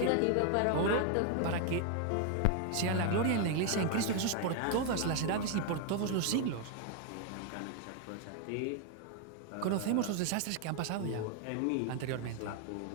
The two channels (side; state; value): both; different; correlation 0.01